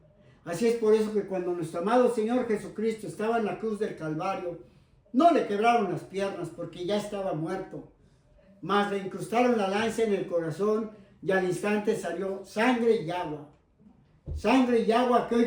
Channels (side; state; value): both; identical; correlation 1.00